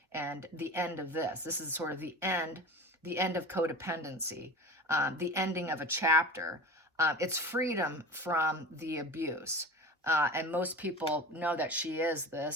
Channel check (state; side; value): normal; both; correlation 0.34